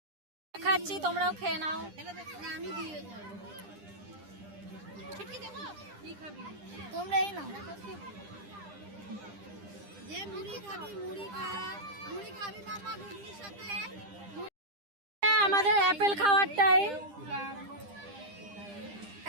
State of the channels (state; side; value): late; left; 10 ms